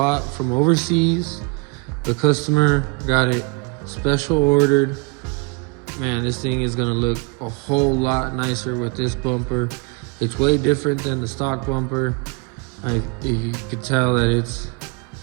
from overseas. The customer got it special ordered. Man, this thing is gonna look a whole lot nicer with this bumper. It's way different than the stock bumper. You could tell that it's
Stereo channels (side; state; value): left; quieter; 29.2 dB